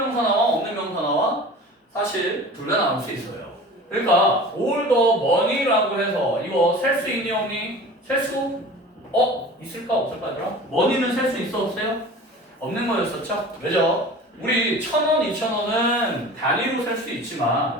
나와? 없는 명사 나와? 사실 둘 다 나올 수 있어요. 그러니까 all the money라고 해서 이거 셀 수 있니 없니? 셀 수? 있을까 없을까 얘들아? money는 셀 수 있어 없어요? 없는 거였었죠? 왜죠? 우리 1,000원, 2,000원은 단위로 셀 수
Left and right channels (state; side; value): normal; both; correlation 0.39